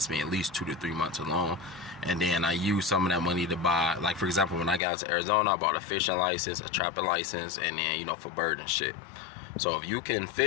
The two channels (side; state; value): right; drops out; at 4.8 s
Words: me at least 2 to 3 months alone. And then I use some of that money to buy, for example, when I got into Arizona, I bought a fishing license, a trapping license, and then, for bird and shit. So if you can